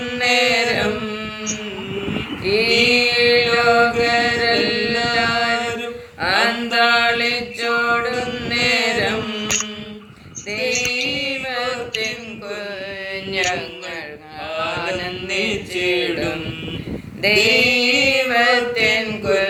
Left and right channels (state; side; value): identical; both; correlation 1.00